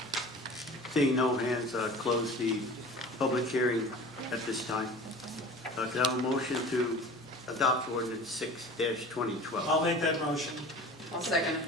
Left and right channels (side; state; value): both; normal; correlation 0.40